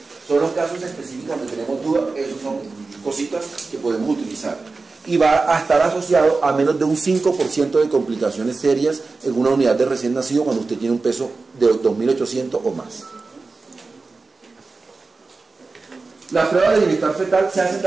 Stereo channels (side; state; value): left; quieter; 3.9 dB